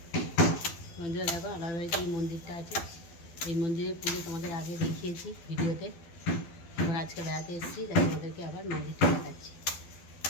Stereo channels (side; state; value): right; late; 12 ms